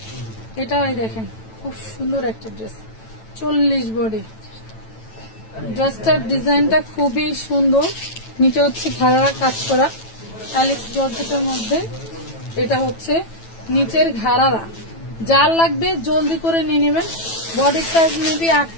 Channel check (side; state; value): right; late; 9.1 ms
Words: এটা এই দেখেন খুব সুন্দর একটা ড্রেস, 40 বডি। ড্রেসটার ডিজাইনটা খুবই সুন্দর, নিচে হচ্ছে ঘাড়ারা কাজ করা, অ্যালেক্স জর্জেটের মধ্যে। এটা হচ্ছে নিচের ঘাড়ারা, যার লাগবে জলদি করে নিয়ে নেবেন। বডি সাইজ মেবি